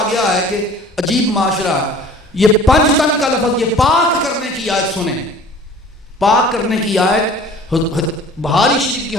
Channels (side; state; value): both; normal; correlation 0.47